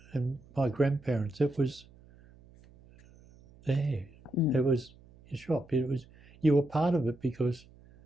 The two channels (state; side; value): noise; right; hum, 25 dB below the sound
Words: and my grandparents, it was there. It was your shop. You were part of it because